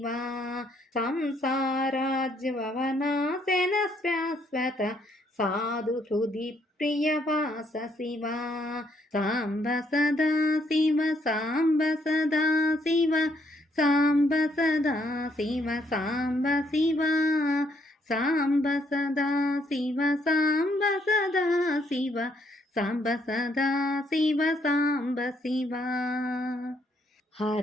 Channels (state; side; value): normal; both; correlation 0.71